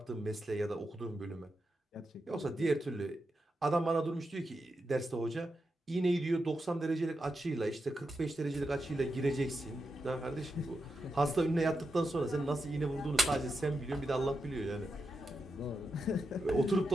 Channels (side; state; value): both; normal; correlation 0.87